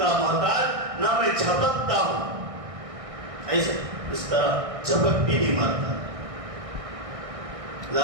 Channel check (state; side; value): late; left; 1.6 ms